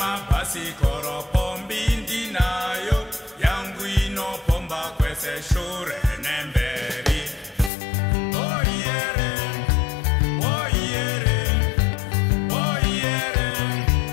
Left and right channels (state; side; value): drops out; right; at 7.7 s